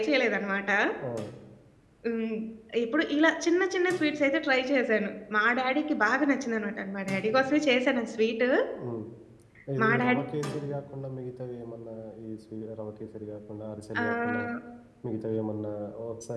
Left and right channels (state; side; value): identical; both; correlation 1.00